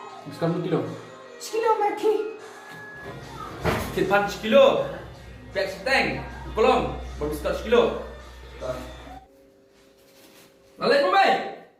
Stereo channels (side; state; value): both; identical; correlation 1.00